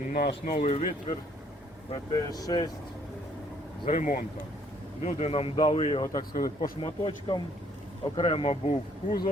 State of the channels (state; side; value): normal; both; correlation 0.63